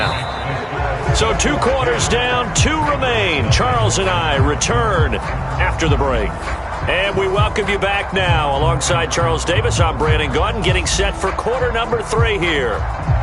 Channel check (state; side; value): identical; both; correlation 1.00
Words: So 2 quarters down, 2 remain. Charles and I return after the break. And we welcome you back now. Alongside Charles Davis, I'm Brandon Gaudin, getting set for quarter number 3 here.